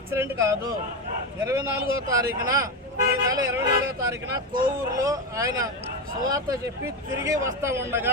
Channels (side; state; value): both; normal; correlation 0.13